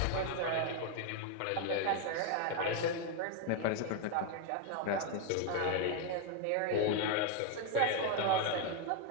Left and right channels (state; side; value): different; both; correlation 0.01